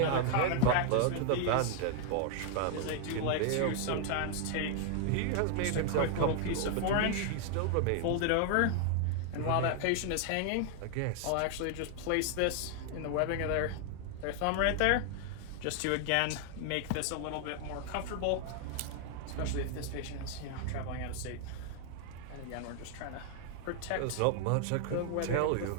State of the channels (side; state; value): both; different; correlation 0.00